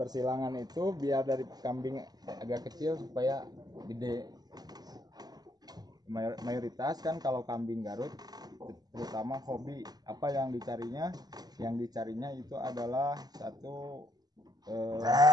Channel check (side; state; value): left; late; 0.19 ms